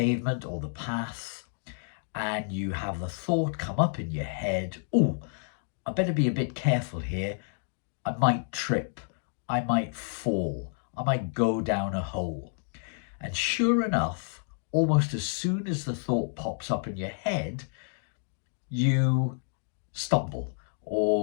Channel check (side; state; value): right; silent; digital silence